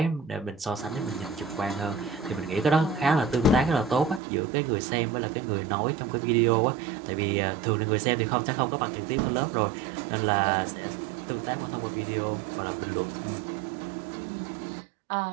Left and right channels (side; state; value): left; drops out; at 4.2 s